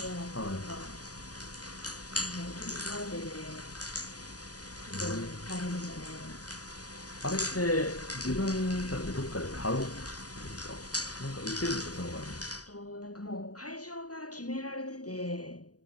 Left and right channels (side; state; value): right; late; 0.68 ms